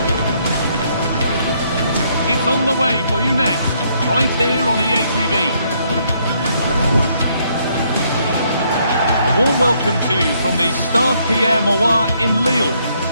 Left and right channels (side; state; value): both; inverted; correlation -0.70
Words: It's on the way for you next, right here on EA TV. A warm welcome to you from the Stade Pierre-Mauroy in Lille.